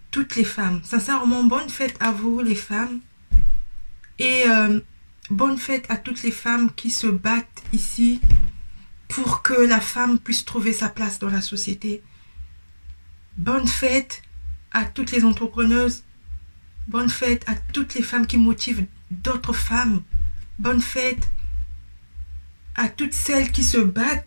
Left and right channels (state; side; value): inverted; both; correlation -1.00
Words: toutes les femmes. Sincèrement, bonne fête à vous les femmes et bonne fête à toutes les femmes qui se battent ici pour que la femme puisse trouver sa place dans la société. Bonne fête à toutes les entrepreneuses. Bonne fête à toutes les femmes qui motivent d'autres femmes. Bonne fête à toutes celles qui se